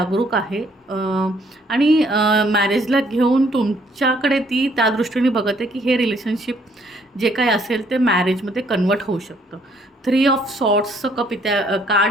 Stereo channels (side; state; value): both; normal; correlation 0.66